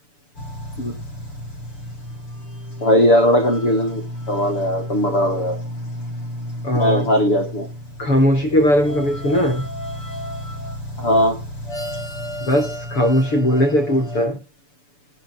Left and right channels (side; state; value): right; late; 6.9 ms